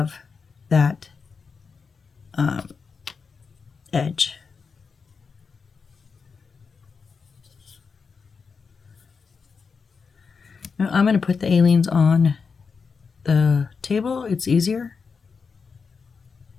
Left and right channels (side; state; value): right; quieter; 5.3 dB